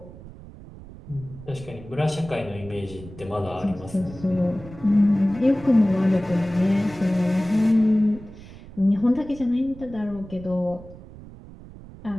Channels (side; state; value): right; noise; rumble, 17 dB below the sound